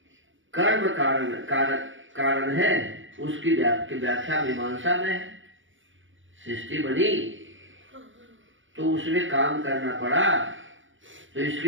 कर्म कारण है उसकी व्याख्या मीमांसा में है। सृष्टि बनी तो उसमें काम करना पड़ा, तो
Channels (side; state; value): left; late; 0.56 ms